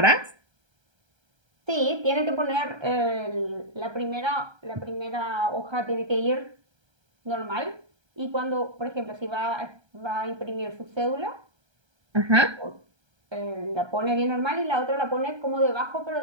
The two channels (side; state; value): left; late; 1.3 ms